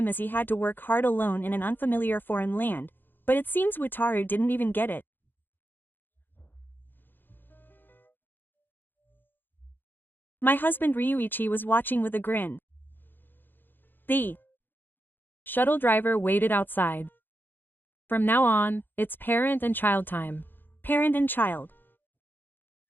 as he had to work hard alone in an unfamiliar foreign land, but it seems Wataru didn't even get it. My husband Ryuichi was watching with a grin. The shuttle driver waited outside. From now on, it's parent and child time. Parent and child.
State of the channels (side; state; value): right; late; 0.094 ms